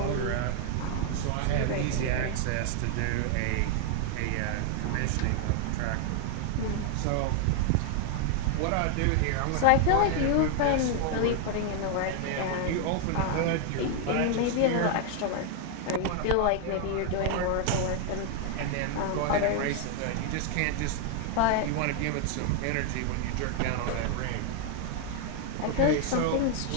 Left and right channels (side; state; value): both; different; correlation 0.00